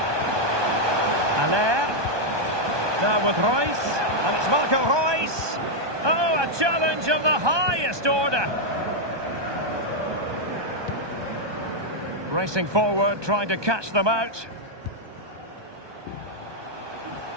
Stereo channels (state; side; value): late; left; 1.2 ms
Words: Aller. Now with Royce. And it's Marco Royce. Oh, a challenge of the highest order. Racing forward, trying to catch them out.